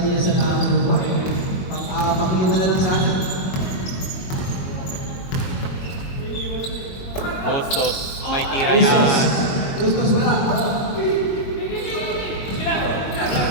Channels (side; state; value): right; late; 22 ms